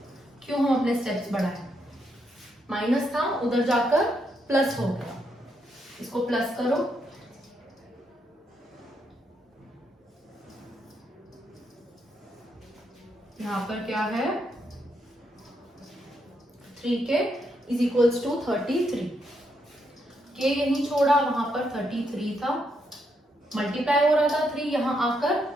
क्यों हम अपने स्टेप्स बढ़ाएं? माइनस था, उधर जाकर प्लस हो गया, इसको प्लस करो, यहां पर क्या है? 3k is equals to 33। k यहीं छोड़ा, वहां पर 33 था, मल्टीप्लाई हो रहा था 3, यहां आकर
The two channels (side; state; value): both; normal; correlation 0.78